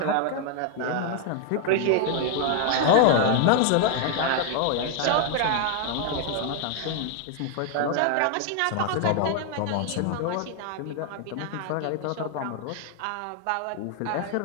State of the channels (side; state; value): both; different; correlation 0.00